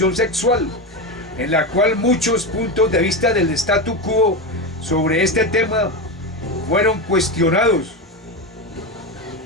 sexual, en la cual muchos puntos de vista del statu quo sobre este tema fueron cuestionados.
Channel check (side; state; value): both; normal; correlation 0.16